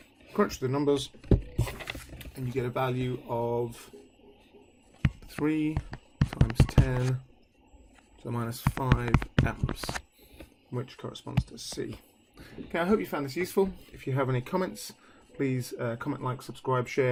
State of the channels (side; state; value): both; identical; correlation 1.00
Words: crunch the numbers, and you get a value of 3 times 10 to the minus 5 amps, which corresponds to C. Okay, I hope you found this useful. If you have any comments, please comment, like, subscribe,